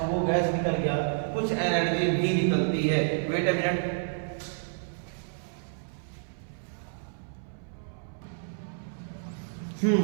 गैस निकल गया। कुछ एनर्जी भी निकलती है। Wait a minute.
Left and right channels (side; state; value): left; silent; 58 dB below the other